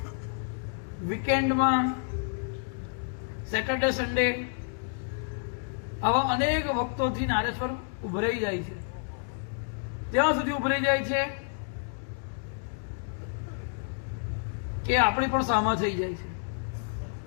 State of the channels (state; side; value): silent; right; digital silence